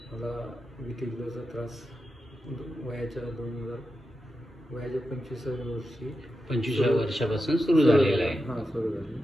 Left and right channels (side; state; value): both; normal; correlation 0.89